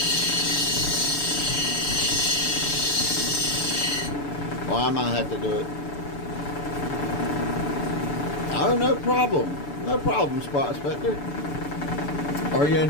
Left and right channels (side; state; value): right; late; 6.9 ms